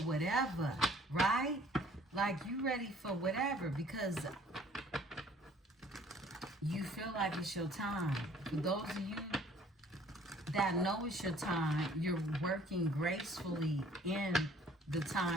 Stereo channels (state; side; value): normal; both; correlation 0.56